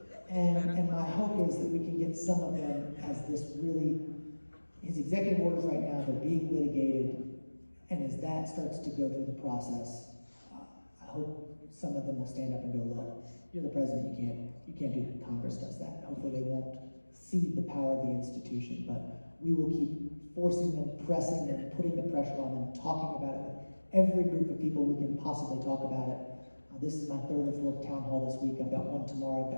And my hope is that we can get some of them as this really, his executive orders right now, they're being litigated, and as that starts to go through the process, I hope some of them will stand up and go, look, you're the president, you can't do that. Congress does that. Hopefully they won't cede the power of the institution, but we will keep forcing them, pressing them, putting the pressure on them, talking about it with every group of people we can possibly talk about it. This is my third or fourth town hall this week. I've got one tomorrow. I've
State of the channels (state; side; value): inverted; both; correlation -1.00